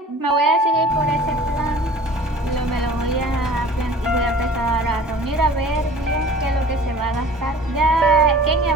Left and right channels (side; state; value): both; normal; correlation 0.45